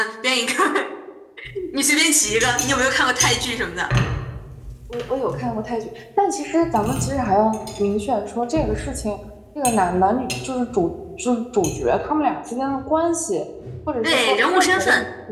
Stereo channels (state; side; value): identical; both; correlation 1.00